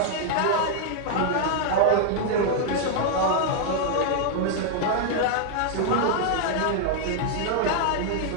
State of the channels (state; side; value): different; both; correlation 0.00